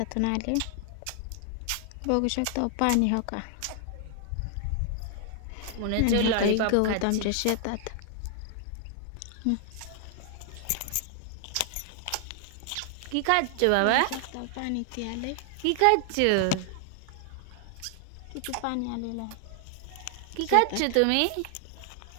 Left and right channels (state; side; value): different; both; correlation 0.00